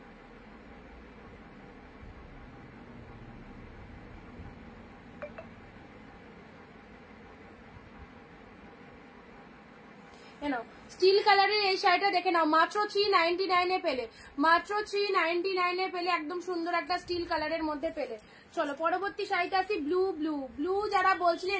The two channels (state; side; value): identical; both; correlation 1.00